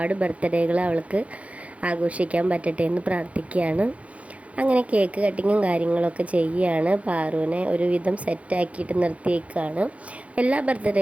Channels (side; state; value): left; late; 0.065 ms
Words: ബർത്ത്ഡേകൾ അവൾക്ക് ആഘോഷിക്കാൻ പറ്റട്ടെ എന്ന് പ്രാർത്ഥിക്കുകയാണ്. അങ്ങനെ കേക്ക് കട്ടിങ്ങും കാര്യങ്ങളൊക്കെ ചെയ്യുകയാണ്. പാറുവിനെ ഒരുവിധം സെറ്റാക്കിയിട്ട് നിർത്തിയേക്കാണ്. എല്ലാ